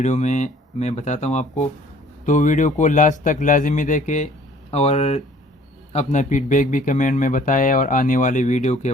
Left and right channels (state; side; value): normal; both; correlation 0.55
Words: में मैं बताता हूँ आपको। तो वीडियो को लास्ट तक लाजमी देखें और अपना फीडबैक भी कमेंट में बताएं और आने वाले वीडियो के